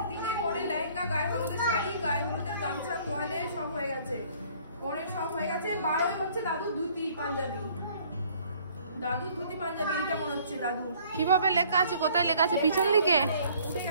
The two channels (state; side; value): inverted; both; correlation -0.57